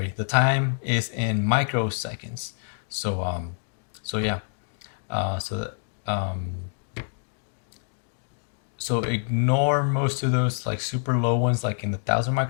the time is in microseconds. So yeah. So ignore most of those like super low ones, like in the 1,000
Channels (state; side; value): silent; right; digital silence